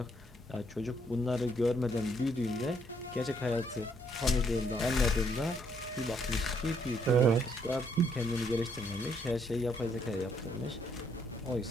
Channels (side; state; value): both; normal; correlation 0.70